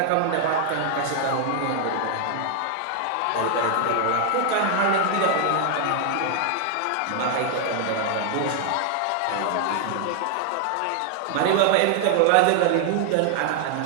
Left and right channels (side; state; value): both; different; correlation 0.00